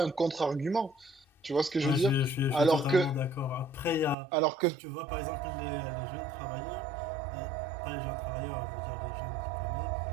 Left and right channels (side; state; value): left; drops out; at 4.2 s